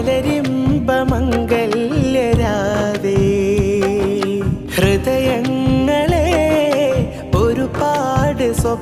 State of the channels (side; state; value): both; identical; correlation 1.00